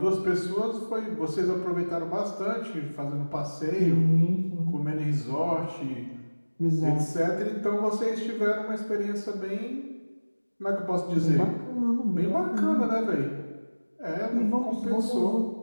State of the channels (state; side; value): inverted; both; correlation -1.00